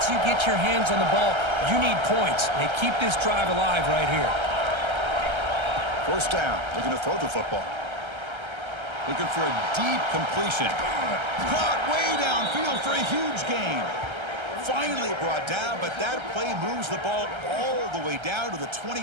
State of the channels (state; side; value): late; left; 1.3 ms